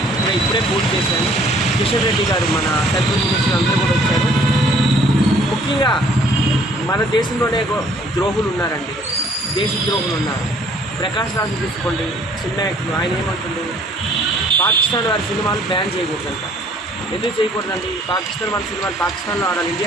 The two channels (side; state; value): both; normal; correlation 0.59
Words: ఇప్పుడే పూర్తి చేశాను. కిషన్ రెడ్డి గారు, మన సెంట్రల్ మినిస్టర్ అందరూ కూడా వచ్చారు. ముఖ్యంగా మన దేశంలోనే ద్రోహులు ఉన్నారండి, దేశద్రోహులు ఉన్నారు. ప్రకాష్ రాజు తీసుకోండి, సినిమా యాక్టర్, ఆయన ఏమంటుంది, పాకిస్తాన్ వారి సినిమాలు బ్యాన్ చేయకూడదంట. ఎందుకు చేయకూడదండి? పాకిస్తాన్ వాళ్ళ సినిమాలు పాకిస్తాన్లో ఆడాలి,